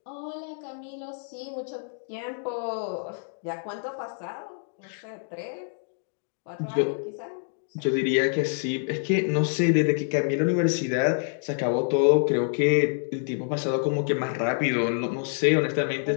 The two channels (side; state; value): right; silent; digital silence